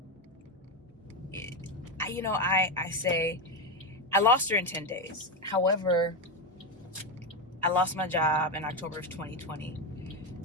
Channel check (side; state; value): both; normal; correlation 0.10